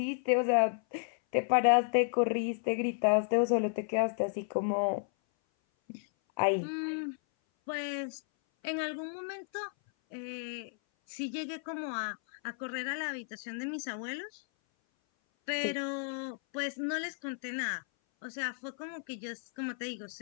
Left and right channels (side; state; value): right; silent; 56 dB below the other